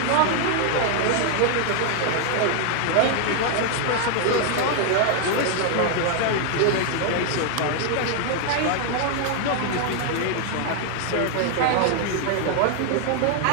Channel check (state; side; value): different; both; correlation 0.00